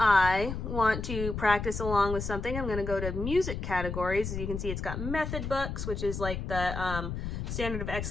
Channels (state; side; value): noise; left; rumble, 5 dB below the sound